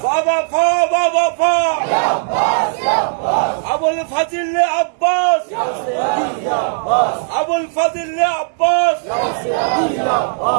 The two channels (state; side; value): silent; left; digital silence